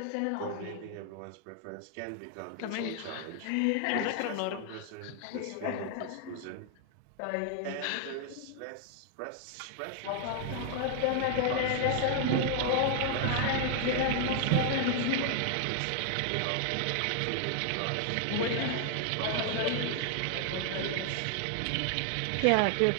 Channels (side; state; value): both; different; correlation 0.00